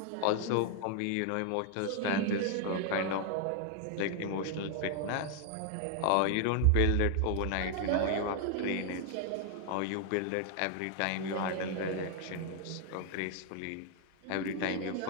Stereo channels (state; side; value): different; both; correlation 0.00